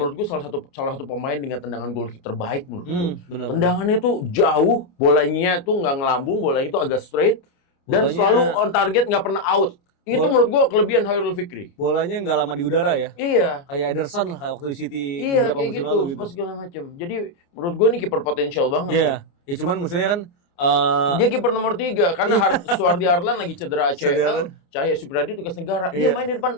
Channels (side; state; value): right; late; 29 ms